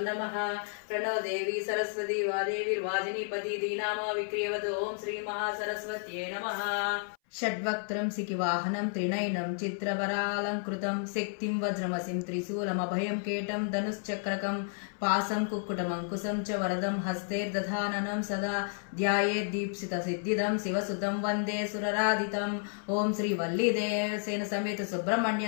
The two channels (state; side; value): silent; right; 57 dB below the other